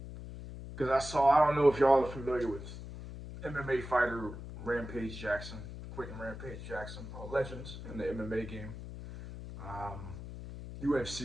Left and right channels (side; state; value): left; noise; hum, 11 dB below the sound